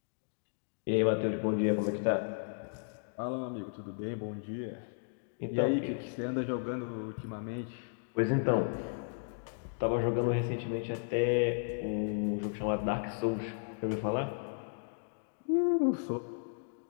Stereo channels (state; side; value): silent; right; digital silence